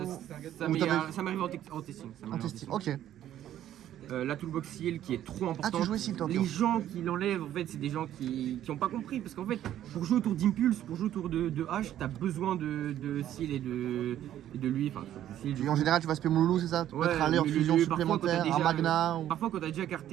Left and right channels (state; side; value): quieter; left; 11.8 dB